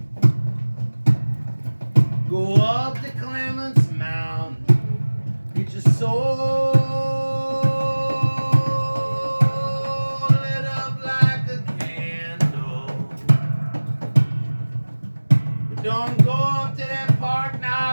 Go up to Clements Mound. Get your soul lit up like a candle. But don't go up to that Park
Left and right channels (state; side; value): inverted; both; correlation -1.00